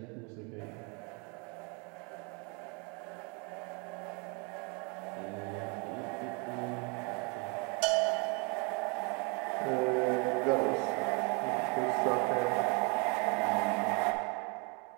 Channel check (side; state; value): left; quieter; 33.0 dB